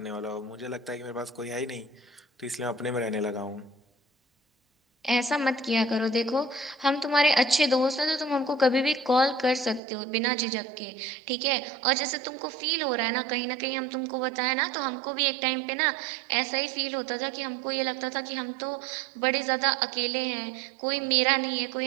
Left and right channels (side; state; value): left; drops out; at 9.8 s